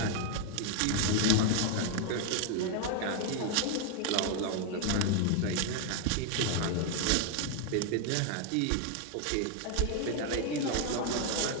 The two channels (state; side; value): different; both; correlation 0.00